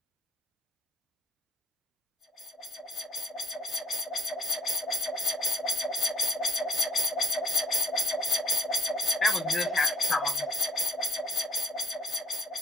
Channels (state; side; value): normal; both; correlation 0.58